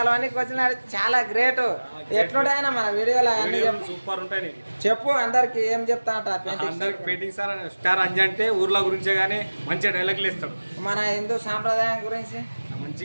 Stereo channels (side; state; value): both; inverted; correlation -1.00